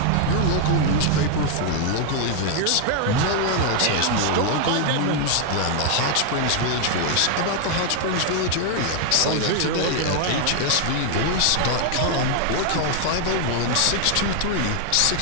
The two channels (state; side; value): different; both; correlation 0.00